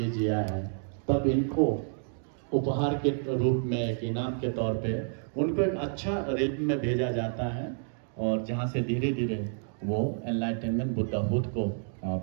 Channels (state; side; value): silent; left; digital silence